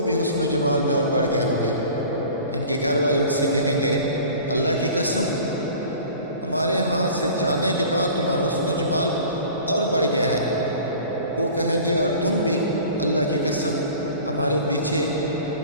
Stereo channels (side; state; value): both; inverted; correlation -0.43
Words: بھی حسن و جمال میں اور بڑھ گئے ہوں گے۔ ان کے گھر والے ان سے کہیں گے، اللہ کی قسم، ہمارے ہاں سے جانے کے بعد تمہارا حسن و جمال اور بڑھ گیا ہے۔ وہ کہیں گے، اور تم بھی، اللہ کی قسم، ہمارے پیچھے